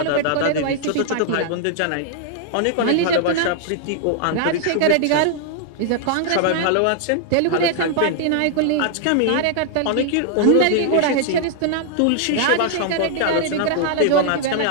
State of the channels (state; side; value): different; both; correlation 0.00